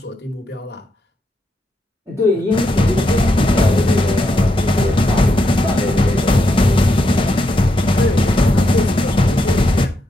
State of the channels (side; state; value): both; normal; correlation 0.82